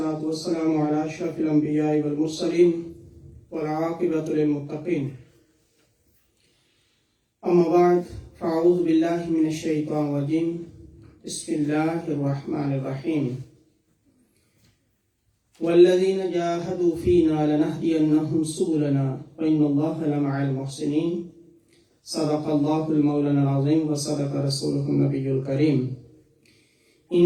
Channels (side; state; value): both; identical; correlation 1.00